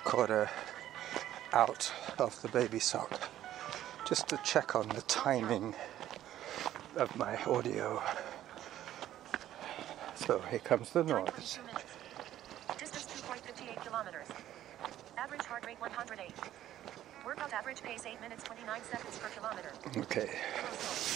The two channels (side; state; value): left; quieter; 12.5 dB